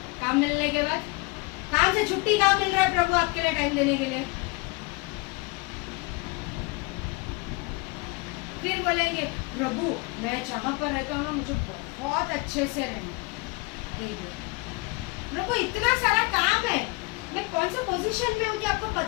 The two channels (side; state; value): right; quieter; 26.3 dB